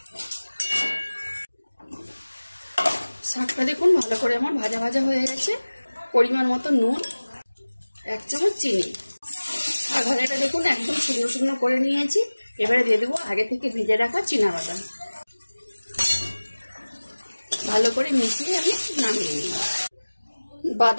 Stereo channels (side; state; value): both; inverted; correlation -1.00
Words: শাকটা দেখুন ভালো করে আমার ভাজা ভাজা হয়ে গেছে। পরিমাণ মতো নুন, 1 চামচ চিনি। শাক ভাজাটা দেখুন একদম শুকনো শুকনো করে নিয়েছি। এবারে দিয়ে দেবো আগে থেকে ভেজে রাখা চীনা বাদাম। ভালো করে মিশিয়ে আমি নামিয়ে নিই।